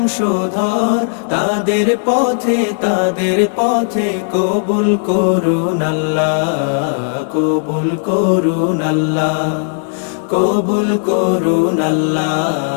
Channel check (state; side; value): silent; right; 57 dB below the other